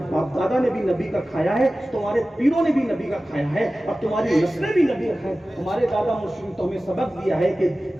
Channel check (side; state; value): both; normal; correlation 0.96